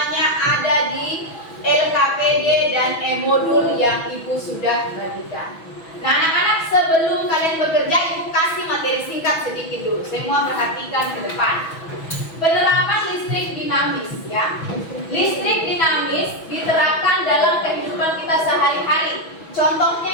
ada di LKPD dan e-modul yang Ibu sudah bagikan. Nah anak-anak, sebelum kalian bekerja, Ibu kasih materi singkat sedikit dulu. Semua perhatikan ke depan. Penerapan listrik dinamis ya. Listrik dinamis diterapkan dalam kehidupan kita sehari-hari.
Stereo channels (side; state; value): right; late; 6.1 ms